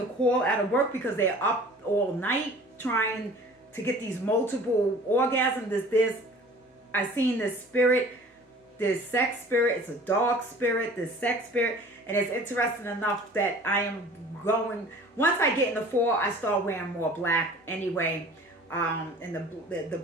call out of work because they're up all night trying to get these multiple orgasms. I've seen this spirit, this sex spirit. It's a dog spirit, this sex spirit, and it's interesting enough that I am going. Once I get in the fall, I start wearing more black anyway. And the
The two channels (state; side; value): normal; both; correlation 0.46